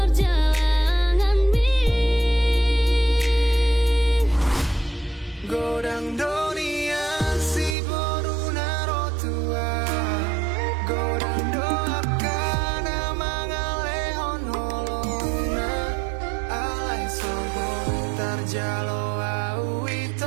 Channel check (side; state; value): left; drops out; at 7.8 s